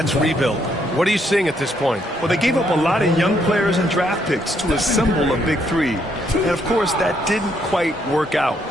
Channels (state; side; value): normal; both; correlation 0.73